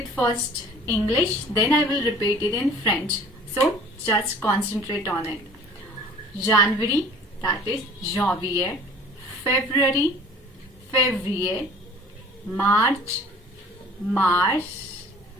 first English, then I will repeat it in French. So just concentrate on it. January, that is Janvier. February, Février. March,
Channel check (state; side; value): normal; both; correlation 0.48